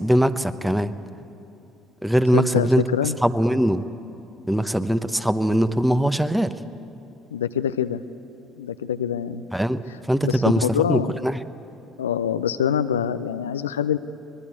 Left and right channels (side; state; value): both; normal; correlation 0.57